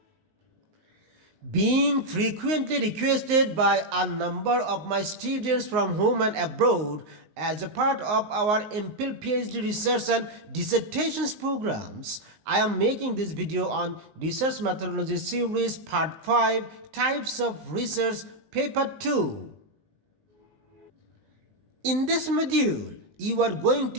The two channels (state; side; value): late; left; 19 ms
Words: Being frequently requested by a number of my students from home and abroad as a part of our MPhil PhD research and dissertations programs, I am making this video on Research Methodology Series Part 5 Types of Research Paper 2. In this module, you are going